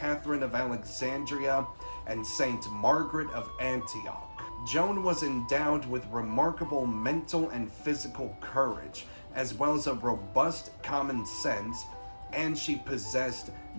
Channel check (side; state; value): both; inverted; correlation -1.00